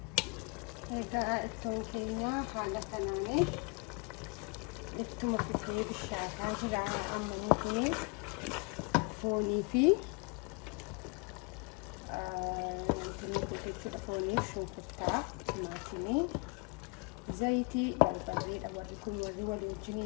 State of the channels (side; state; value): right; quieter; 30.8 dB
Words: egaa ittoon keenya haala kanaanii ittuma fufee bishaataa jira. Amma nuti foonii fi foonii shunkurtaa timaatimii zayitii barbareedha warri kun warri